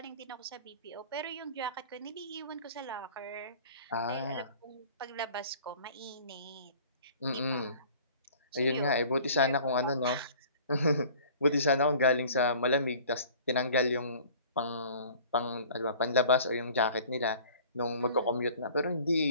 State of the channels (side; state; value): both; inverted; correlation -0.47